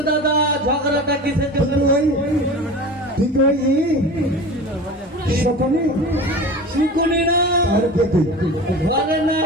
দাদা, ঝগড়াটা কিসের জন্য? তুই তো সপনে শুকুনি না, আর পেতে ঘরে না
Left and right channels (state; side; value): normal; both; correlation 0.34